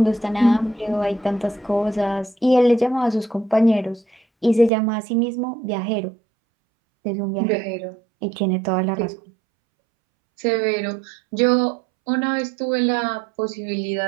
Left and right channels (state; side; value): drops out; left; at 4.7 s